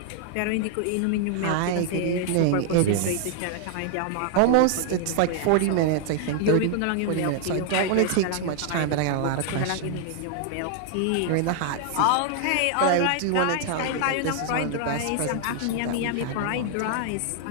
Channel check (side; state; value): both; different; correlation 0.00